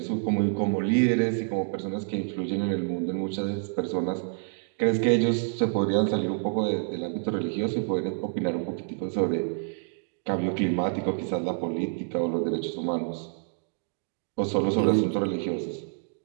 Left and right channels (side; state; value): left; silent; digital silence